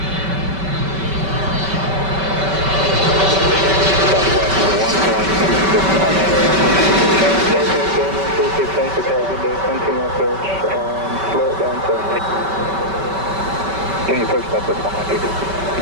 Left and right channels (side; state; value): left; late; 5.2 ms